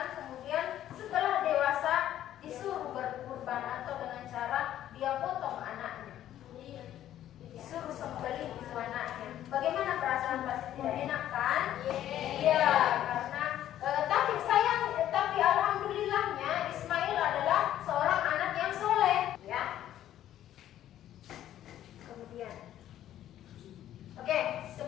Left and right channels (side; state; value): right; quieter; 12.0 dB